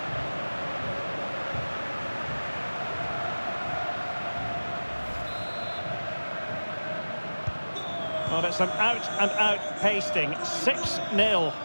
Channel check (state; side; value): inverted; both; correlation -1.00